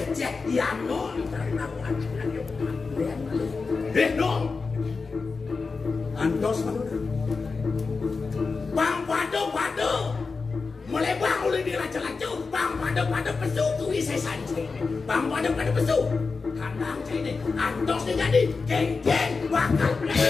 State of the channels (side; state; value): right; quieter; 4.5 dB